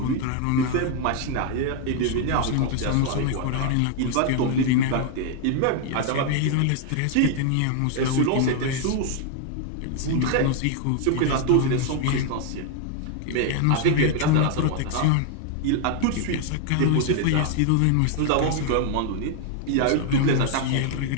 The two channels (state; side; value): different; both; correlation 0.00